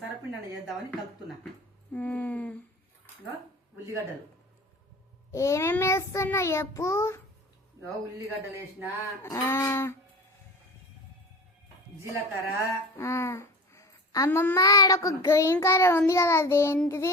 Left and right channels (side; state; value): both; normal; correlation 0.35